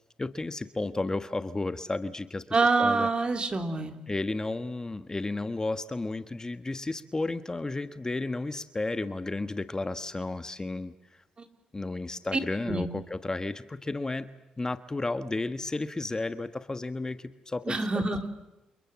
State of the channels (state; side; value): normal; both; correlation 0.89